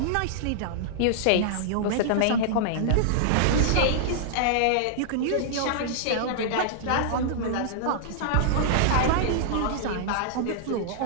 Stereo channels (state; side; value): different; both; correlation -0.02